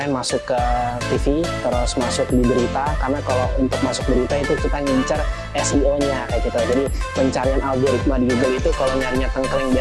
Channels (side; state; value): both; identical; correlation 1.00